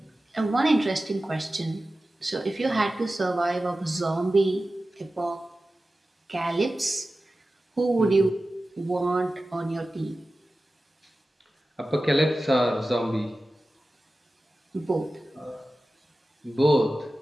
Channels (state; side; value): normal; both; correlation 0.95